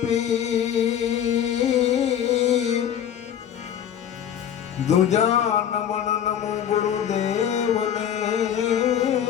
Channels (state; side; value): quieter; right; 9.5 dB